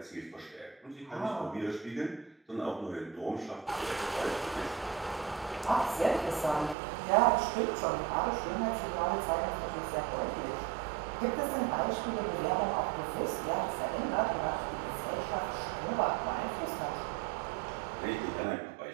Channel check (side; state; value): left; drops out; at 6.8 s